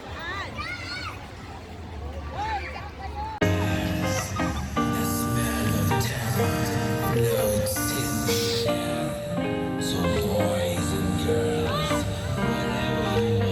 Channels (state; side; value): identical; both; correlation 1.00